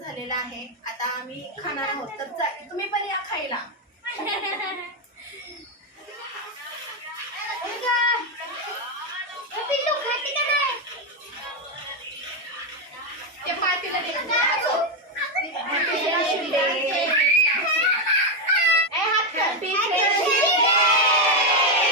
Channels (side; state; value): both; normal; correlation 0.05